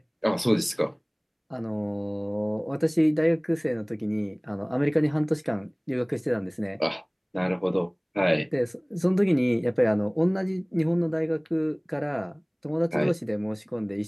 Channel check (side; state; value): both; identical; correlation 1.00